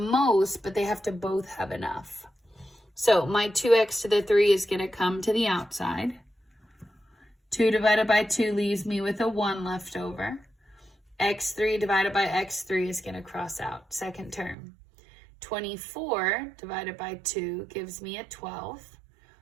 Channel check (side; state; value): left; drops out; at 14.6 s